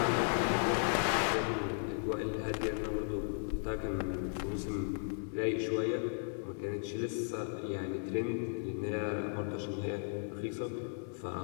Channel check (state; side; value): silent; right; digital silence